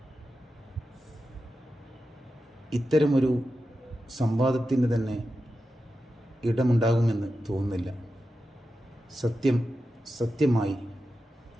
ഇത്തരമൊരു സംവാദത്തിന് തന്നെ ഇടമുണ്ടാകുമെന്ന് തോന്നുന്നില്ല. സത്യമായി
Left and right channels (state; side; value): normal; both; correlation 0.91